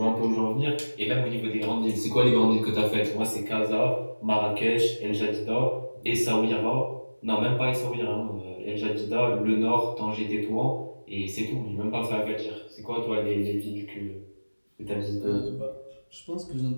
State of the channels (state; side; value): inverted; both; correlation -1.00